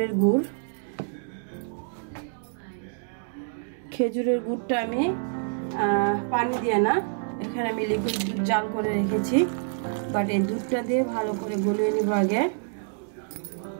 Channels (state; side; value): silent; left; digital silence